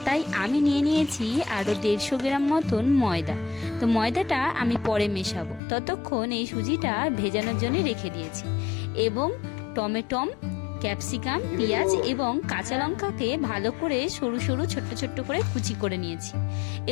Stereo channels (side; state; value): right; drops out; at 5.6 s